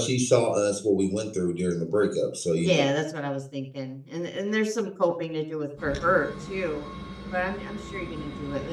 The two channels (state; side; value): identical; both; correlation 1.00